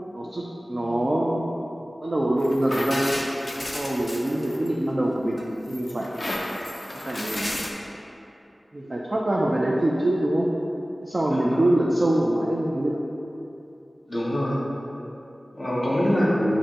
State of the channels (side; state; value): both; normal; correlation 0.97